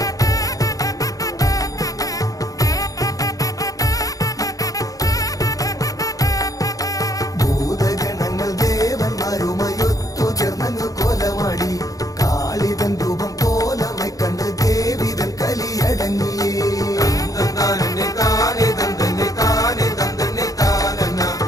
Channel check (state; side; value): late; right; 0.17 ms